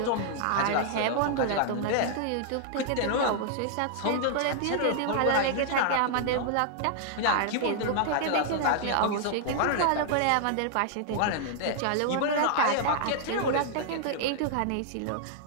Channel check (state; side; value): different; both; correlation 0.00